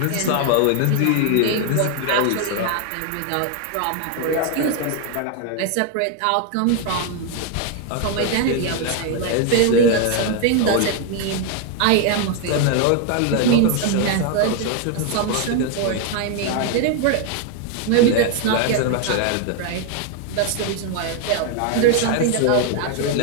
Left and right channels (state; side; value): different; both; correlation 0.01